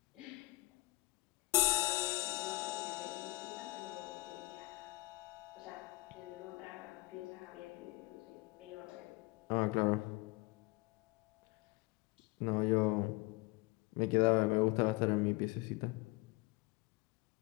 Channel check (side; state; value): right; quieter; 21.7 dB